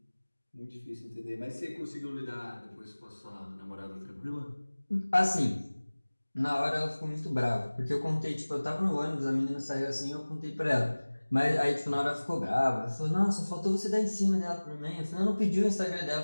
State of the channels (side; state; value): both; inverted; correlation -1.00